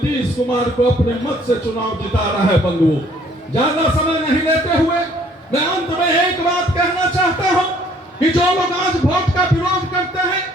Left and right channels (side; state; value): both; normal; correlation 0.60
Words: कुमार को अपने मत से चुनाव जिता रहा है। बंधुओं, ज्यादा समय नहीं लेते हुए मैं अंत में एक बात कहना चाहता हूं कि जो लोग आज वोट का विरोध करते हैं,